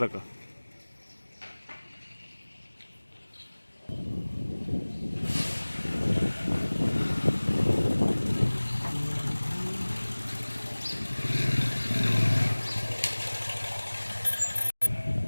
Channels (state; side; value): inverted; both; correlation -1.00